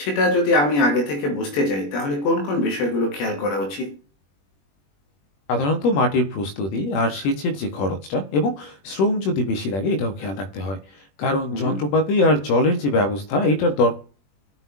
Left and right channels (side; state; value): right; late; 21 ms